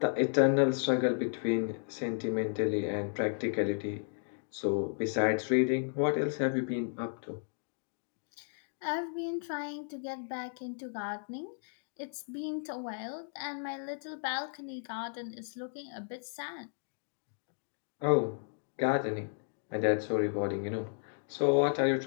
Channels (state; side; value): silent; right; digital silence